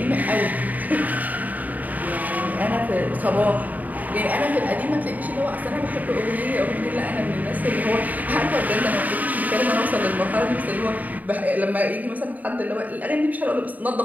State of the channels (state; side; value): late; left; 0.077 ms